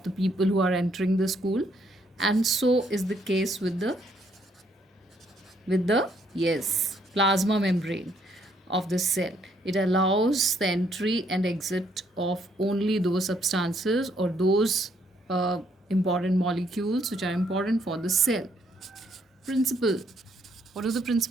the people who are entering the school, and so is the case with the yes plasma membrane of the cell. It allows the entry and exit of only those substances or those important molecules which are important for the cell. Principal, what does the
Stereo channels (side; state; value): both; normal; correlation 0.70